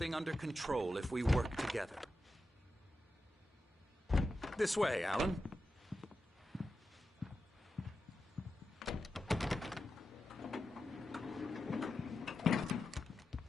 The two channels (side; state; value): both; normal; correlation 0.90